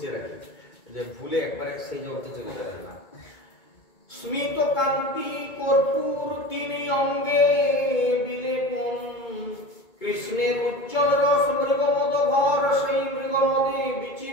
রাখি যে ভুলে একবারে সেই জগতে চলে যাবেন না। স্মিত কান্তি কর্পূর তিনি অঙ্গে বিলেপন, কৃষ্ণের উজ্জ্বল রস মৃগমদ ভর, সেই মৃগমদে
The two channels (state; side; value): late; right; 2.2 ms